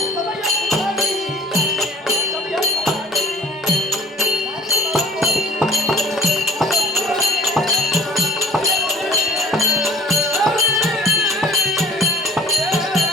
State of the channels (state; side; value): normal; both; correlation 0.48